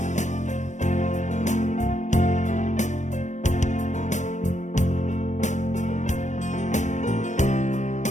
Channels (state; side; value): late; right; 0.35 ms